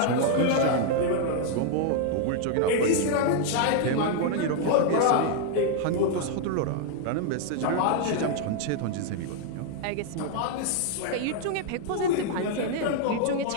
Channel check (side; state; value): both; different; correlation 0.00